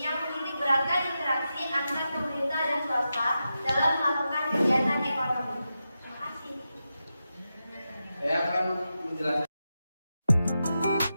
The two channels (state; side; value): inverted; both; correlation -0.90